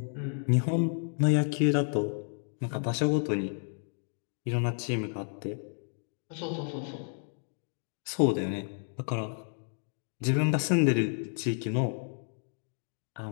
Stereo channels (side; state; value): right; silent; 57 dB below the other